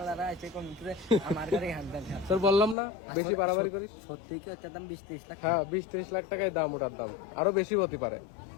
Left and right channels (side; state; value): right; drops out; at 2.8 s